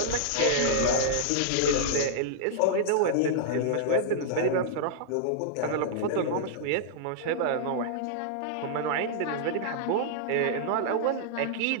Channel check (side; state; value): both; different; correlation -0.02